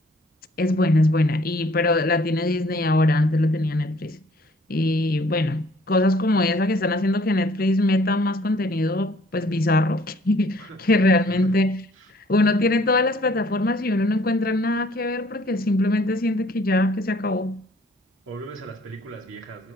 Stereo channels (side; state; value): both; normal; correlation 0.59